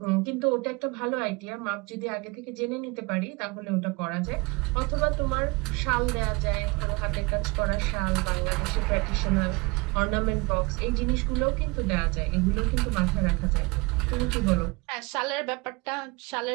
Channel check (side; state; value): left; quieter; 26.4 dB